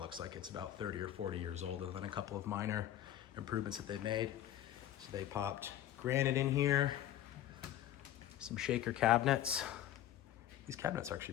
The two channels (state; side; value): quieter; right; 12.2 dB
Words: looks like it's about 30 or 40 years old, other than a couple of minor improvements that they've made. So they popped granite in here, some shaker cabinets. These cabinets are